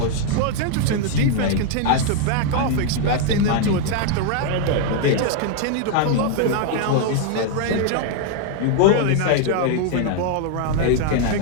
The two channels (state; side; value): different; both; correlation 0.00